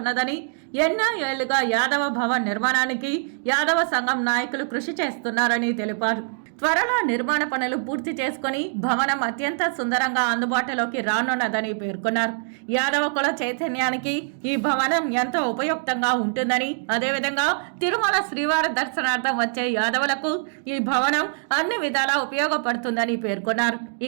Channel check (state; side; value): silent; left; digital silence